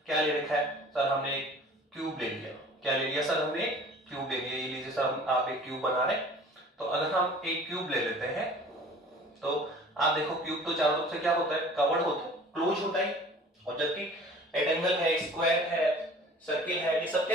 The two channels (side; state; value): both; normal; correlation 0.46